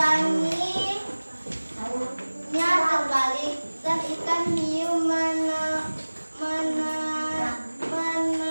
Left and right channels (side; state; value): both; inverted; correlation -1.00